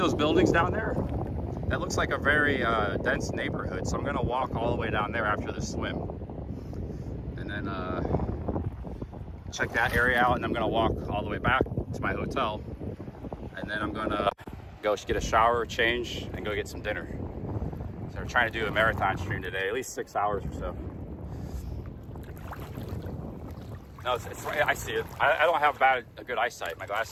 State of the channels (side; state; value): both; identical; correlation 1.00